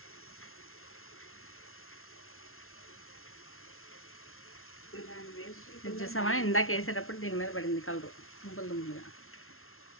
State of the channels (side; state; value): right; late; 0.62 ms